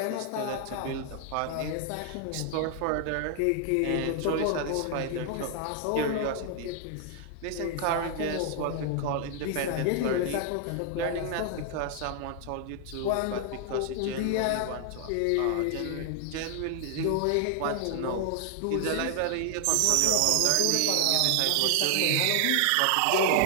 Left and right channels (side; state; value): both; different; correlation 0.00